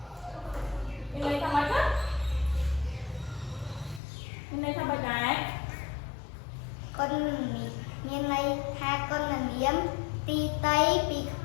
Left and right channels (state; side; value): drops out; right; at 4.0 s